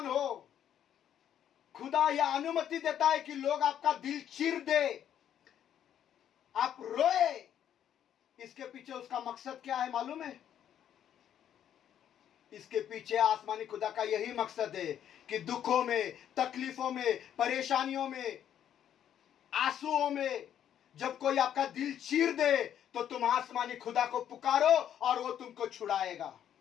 हो। खुदा यह अनुमति देता है कि लोग आपका दिल चीर दे, आप रोए। इसके पीछे उसका मकसद क्या है मालूम है? इसके पीछे आसमानी खुदा का यही मकसद है कि दुखों में, तकलीफों में, परेशानियों में, आंसुओं में जब कोई आपका दिल चीर दे तो तुम आसमानी खुदा को पुकारो और वो तुमको छुड़ाएगा।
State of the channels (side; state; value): right; quieter; 10.0 dB